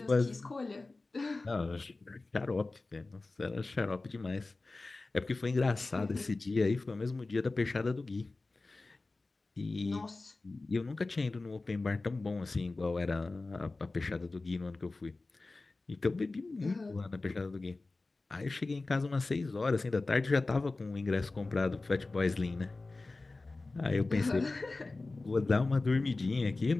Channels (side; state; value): right; quieter; 3.4 dB